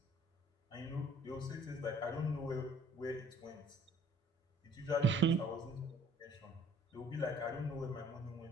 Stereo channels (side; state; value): both; normal; correlation 0.56